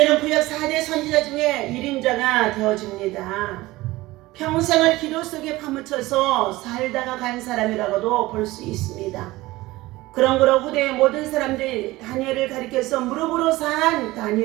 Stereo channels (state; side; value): quieter; left; 19.0 dB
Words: 구약 4대 선지자 중에 1인자가 되어집니다. 평생을 기도 속에 파묻혀서 살다가 간 사람이라고도 볼 수 있습니다. 그러므로 후대의 모든 사람들이 다니엘을 가리켜서 무릎으로 산